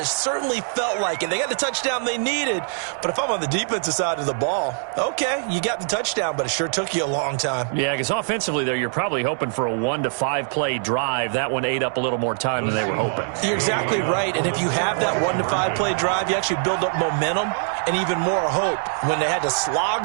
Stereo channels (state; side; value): silent; left; 62 dB below the other